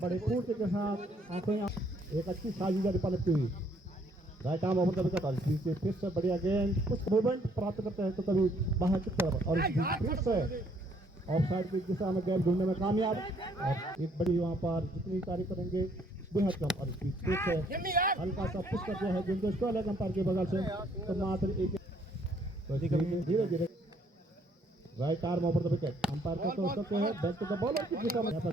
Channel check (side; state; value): both; normal; correlation 0.66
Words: बड़े फूटी के साथ आंखें एक अच्छी साजिश पलटती हुई right arm over the wicket और इस बीच फिर से बढ़िया गेंद कुछ मूवमेंट प्राप्त करते हैं तो कभी बाहर की तरफ और इस बीच फिर से ऑफसाइड की दिशा में गेंद ढूंढने में कामयाब और एक बड़ी वहाँ पर जितनी तारीफ करेंगे बेहद कम और इस बीच फिर से हल्का सा पुश कर दिया है गेंद को स्टॉल है अंपायर के बगल से तो मात्र एक धीरे धीरे right arm over the wicket umpire का तो सकते हैं बैक टू द बॉलर की दिशा में यहाँ पर